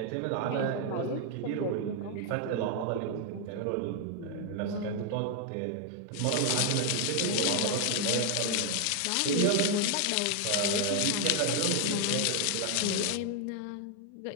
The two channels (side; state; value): both; different; correlation 0.00